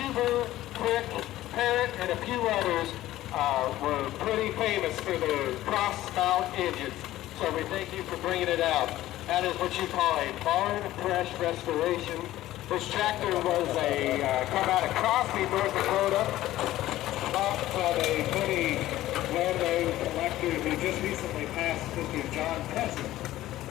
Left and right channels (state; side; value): quieter; right; 15.0 dB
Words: Quick, Parrott, and a few others were pretty famous for their cross-mount engines. So we thank you for bringing it out. That is what you call a barn fresh restoration. This tractor was come out of Crosby, North Dakota, bought from a pretty well-known collector who just recently passed, Mr. John Preston.